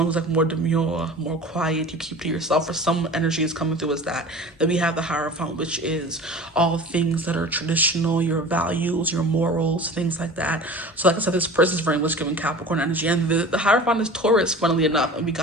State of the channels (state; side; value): normal; both; correlation 0.38